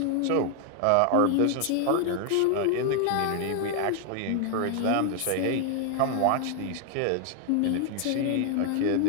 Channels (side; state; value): both; different; correlation 0.00